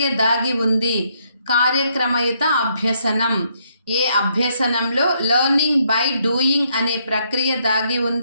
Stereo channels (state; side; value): inverted; both; correlation -0.73